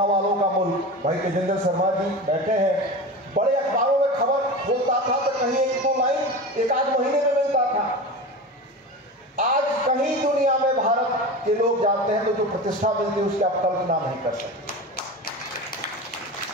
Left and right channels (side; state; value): both; normal; correlation 0.29